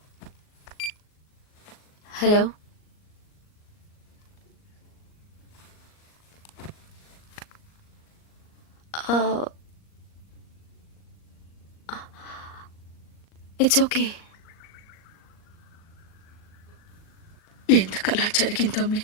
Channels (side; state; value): right; late; 38 ms